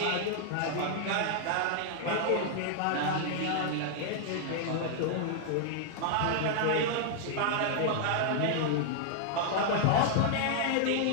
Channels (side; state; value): both; different; correlation -0.01